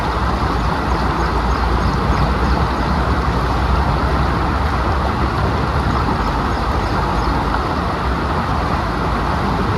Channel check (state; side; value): identical; both; correlation 1.00